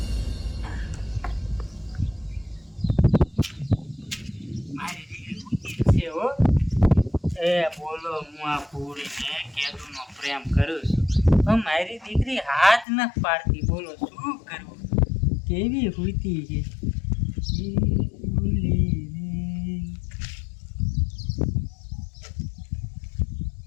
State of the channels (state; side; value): drops out; right; at 12.9 s